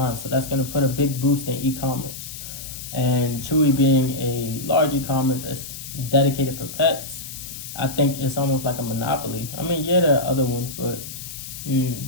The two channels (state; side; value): noise; left; hiss, 11 dB below the sound